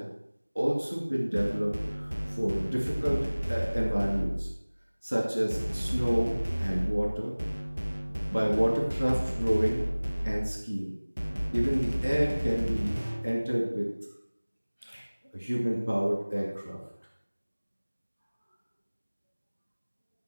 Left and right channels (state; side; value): inverted; both; correlation -1.00